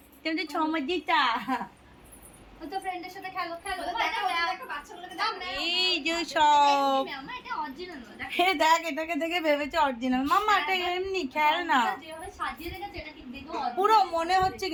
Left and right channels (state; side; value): identical; both; correlation 1.00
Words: তোমাদের ছমাজিটা। তো ফ্রেন্ডের সাথে খেলো খেলো। এই যে সব দেখ, এটাকে দেখে ভেবেছে অরিজিনাল। মাম্মা এটা এমনি খেল না, পুরো মনে হচ্ছে